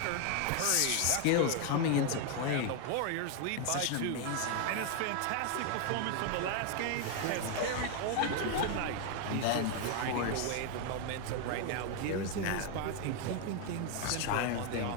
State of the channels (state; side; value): different; both; correlation 0.01